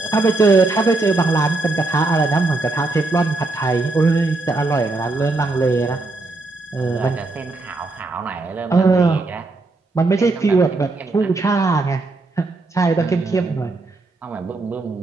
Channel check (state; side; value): quieter; left; 3.3 dB